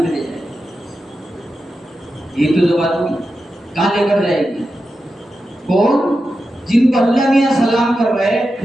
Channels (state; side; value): normal; both; correlation 0.90